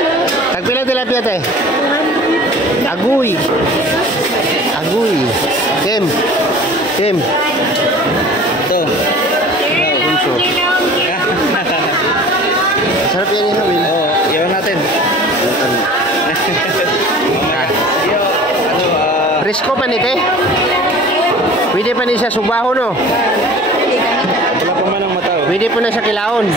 Tagpila tilapia te? Aguy. Aguy. Kem. Kem. Ito. Punso. Sarap yan yung Will. Oo, iwan natin. Presko pa ni te? Pwede pa ni siya subaho no? Wala pa man ang mataw. Pwede po na sa kilaon.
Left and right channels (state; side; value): normal; both; correlation 0.43